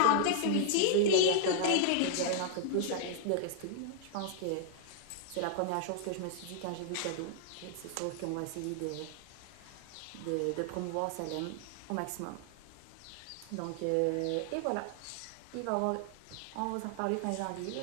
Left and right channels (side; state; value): both; different; correlation -0.01